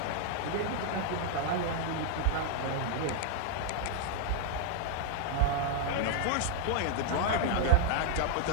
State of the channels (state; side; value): different; both; correlation 0.00